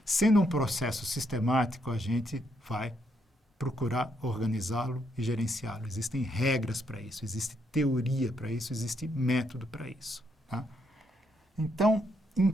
Sendo um processo sistemático, a gente vai procurar organizá-lo e gerenciá-lo. Existem regras para isso, existe teoria para isso, existe método para isso. Tá? Então,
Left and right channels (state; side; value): normal; both; correlation 0.76